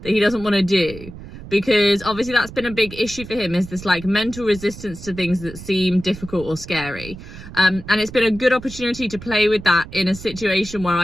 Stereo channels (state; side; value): noise; right; rumble, 14 dB below the sound